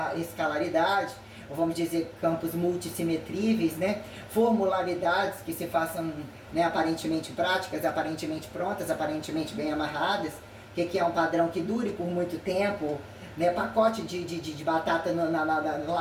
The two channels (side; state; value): both; identical; correlation 1.00